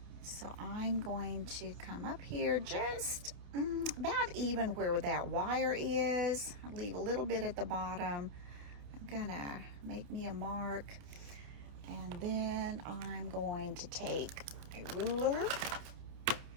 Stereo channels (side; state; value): left; late; 29 ms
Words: So I'm going to come up here just about even where that wire is. I'll leave a little bit at the bottom. I'm gonna make me a mark, and then I'm going to take a ruler,